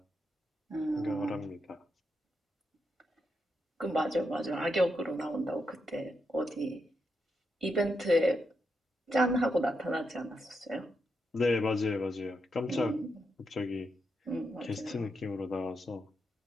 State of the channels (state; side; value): normal; both; correlation 0.83